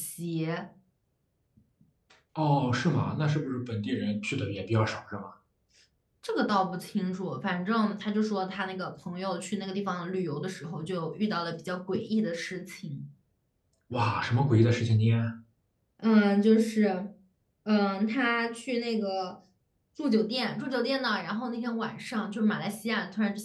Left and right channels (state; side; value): identical; both; correlation 1.00